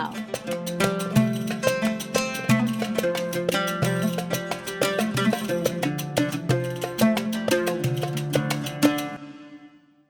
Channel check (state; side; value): identical; both; correlation 1.00